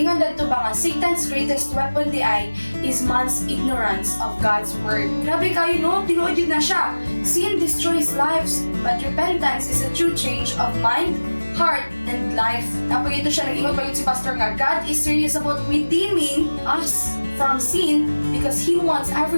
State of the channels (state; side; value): inverted; both; correlation -1.00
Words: dito ba nga Satan's greatest weapon di ay is man's ignorance of God's word. Grabe kayo, no? Tinuod yun na siya. Sin destroys lives, but repentance is a true change of mind, heart, and life. Napag ito siya, nag-ingon pa yun si Pastor nga, God is serious about redeeming us from sin because He wants